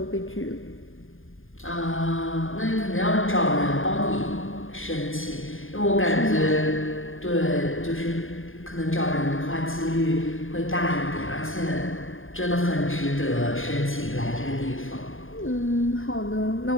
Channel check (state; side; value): late; right; 0.59 ms